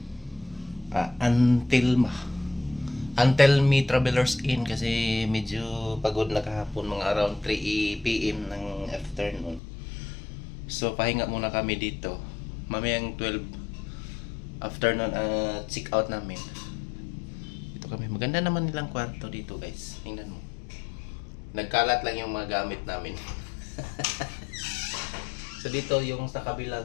Antelmi Travelers Inn kasi medyo pagod na kahapon, mga around 3 PM ng afternoon. So pahinga muna kami dito. Mamayang 12 afternoon check out namin. Dito kami. Maganda naman nilang kwarto dito guys. Tingnan mo. Nagkalat lang yung mga gamit namin. So dito yung sa kabilang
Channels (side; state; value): right; drops out; at 9.6 s